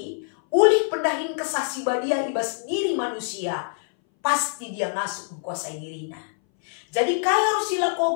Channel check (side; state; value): right; silent; 60 dB below the other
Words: ulih pendahin kesah si badia ibas diri manusia, pasti dia ngasuh menguasai dirinya. Jadi kaya harus